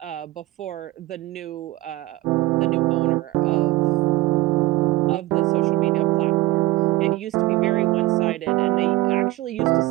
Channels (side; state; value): left; quieter; 18.5 dB